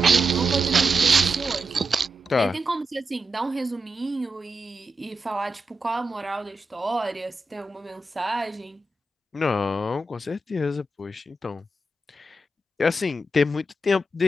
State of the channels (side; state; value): both; normal; correlation 0.87